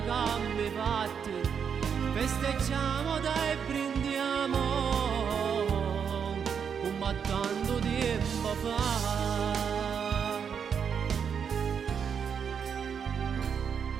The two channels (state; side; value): quieter; left; 7.1 dB